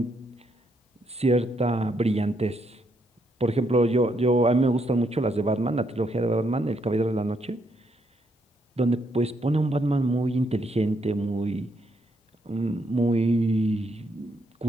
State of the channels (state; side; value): normal; both; correlation 0.76